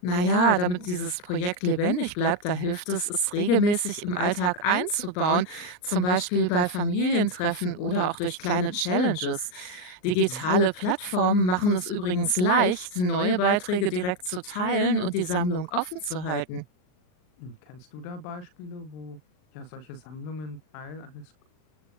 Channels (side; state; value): right; late; 39 ms